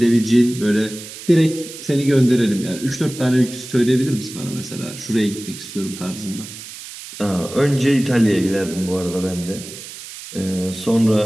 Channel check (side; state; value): right; noise; hiss, 13 dB below the sound